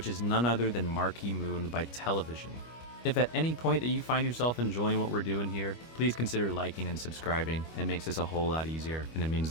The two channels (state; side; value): late; right; 25 ms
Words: is none other than Marquee Moon by Television. If at any point that you find yourself enjoying what we're doing here, please consider liking and subscribing. It makes this a whole lot easier, and it means